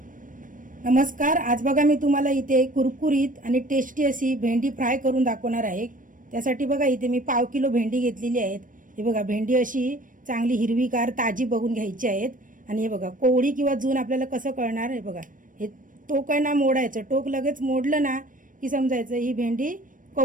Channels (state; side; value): late; left; 0.38 ms